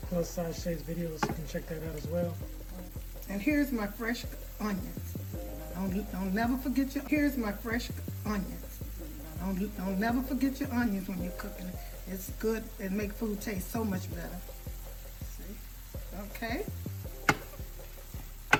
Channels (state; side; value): identical; both; correlation 1.00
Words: Plus Size Shay's videos so you can check that out as well. And here's my fresh onions. Don't never forget your, here's my fresh onions. Don't never forget your onions when you're cooking it. It's good, it make food taste so much better. See? Okay.